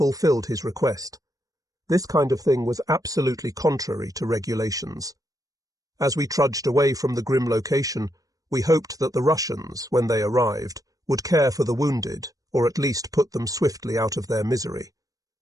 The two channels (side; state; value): left; late; 0.17 ms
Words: his request. This kind of thing was absolutely contrary to regulations. As we trudged away from the grim location, we hoped that the Russians, when they arrived, would care for the wounded, or at least put them swiftly out of their misery.